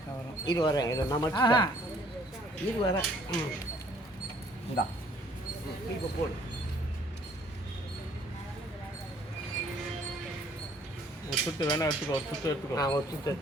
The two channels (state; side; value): normal; both; correlation 0.60